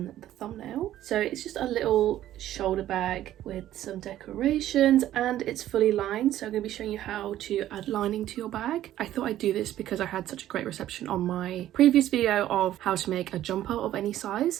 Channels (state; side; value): quieter; left; 12.9 dB